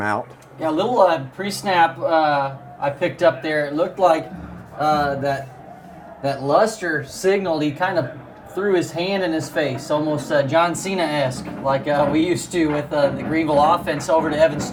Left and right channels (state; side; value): identical; both; correlation 1.00